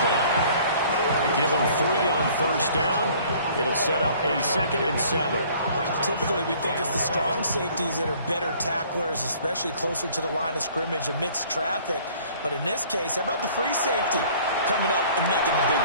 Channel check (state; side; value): inverted; both; correlation -0.54